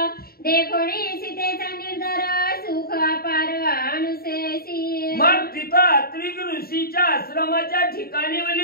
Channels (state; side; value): late; right; 0.44 ms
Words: देखोणी सीतेचा निर्धार सुख अपार अनुसेसी. मग तिथं अत्रिक ऋषीच्या आश्रमाच्या ठिकाणी